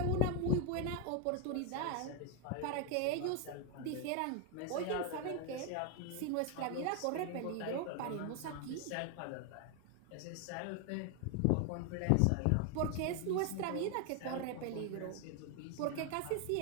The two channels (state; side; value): different; both; correlation 0.01